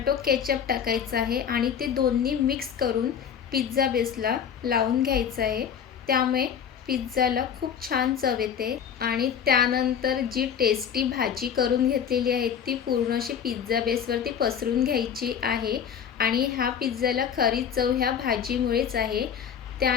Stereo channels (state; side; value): quieter; right; 8.0 dB